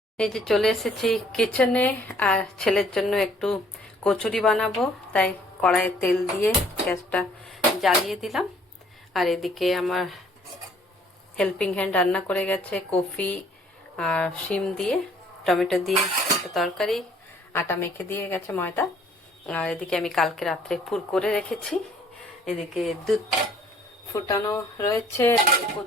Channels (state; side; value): normal; both; correlation 0.59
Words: এই যে চলে এসেছি কিচেনে, আর ছেলের জন্য একটু কচুরি বানাবো, তাই কড়াইয়ে তেল দিয়ে গ্যাসটা জ্বালিয়ে দিলাম। আর এদিকে আমার হেল্পিং হ্যান্ড রান্না করে গেছে কফি আর শিম দিয়ে টমেটো দিয়ে একটা তরকারি, আটা মেখে দিয়ে গেছে ময়দা। আর এদিকে আমি কালকে রাত্রে পুর করে রেখেছি। এদিকে দুধ ফুটানো রয়েছে,